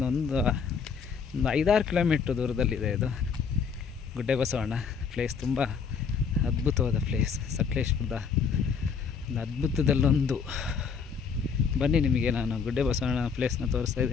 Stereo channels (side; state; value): right; quieter; 6.0 dB